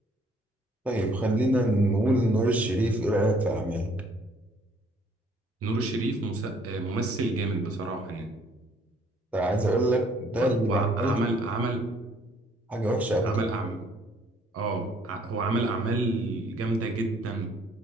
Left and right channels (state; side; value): normal; both; correlation 0.62